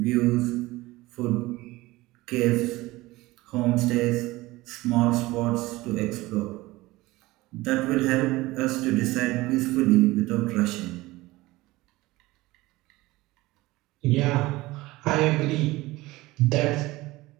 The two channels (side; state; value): left; quieter; 19.5 dB